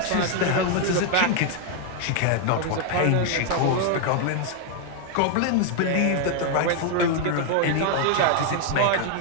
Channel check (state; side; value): different; both; correlation 0.00